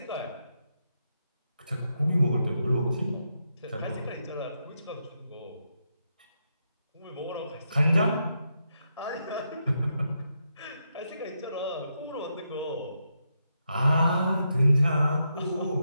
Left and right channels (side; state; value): both; inverted; correlation -0.82